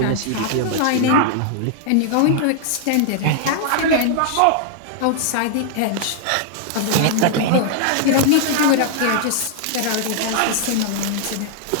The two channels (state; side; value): different; both; correlation -0.01